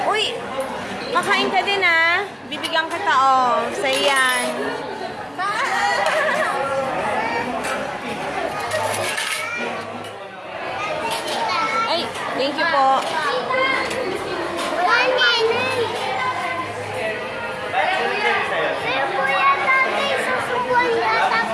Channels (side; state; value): both; identical; correlation 1.00